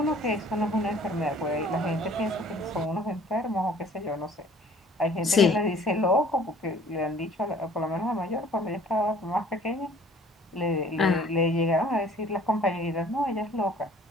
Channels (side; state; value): both; normal; correlation 0.53